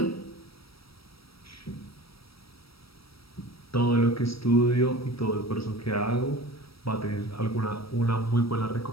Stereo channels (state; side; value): late; right; 0.76 ms